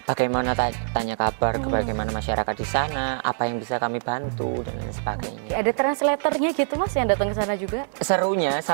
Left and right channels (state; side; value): silent; left; digital silence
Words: bagaimana tanya kabar ke bagaimana masyarakat di sana, apa yang bisa kami bantu dan lain sebagainya. Ada translatornya gitu Mas yang datang ke sana juga? Serunya